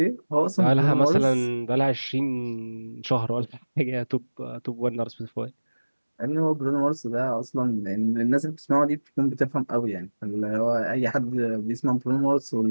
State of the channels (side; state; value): both; inverted; correlation -1.00